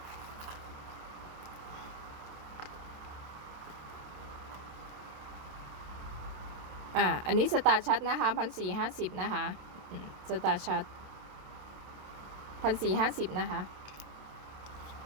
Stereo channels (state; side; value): late; left; 27 ms